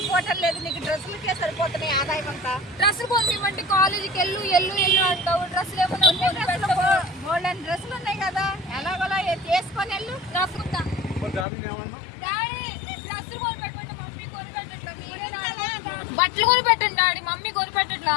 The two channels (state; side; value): drops out; right; at 11.5 s